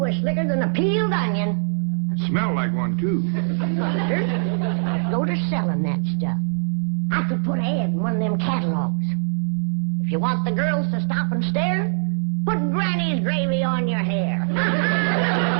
slicker than a peeled onion. Smelled like one, too. Sure. I'd go to selling that stuff. I could put an ad in one of them catalogs. If you want the girls to stop and stare, put Granny's gravy on your hair.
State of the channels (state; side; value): silent; left; 64 dB below the other